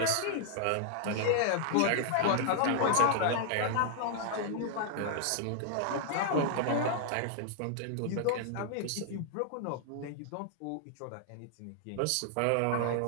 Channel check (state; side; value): different; both; correlation -0.01